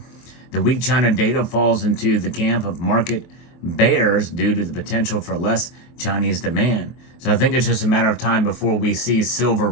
The weak China data falls into the camp of market bears due to the potential for less Chinese demand. So I think it's just a matter of time before we see silver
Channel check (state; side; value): late; right; 23 ms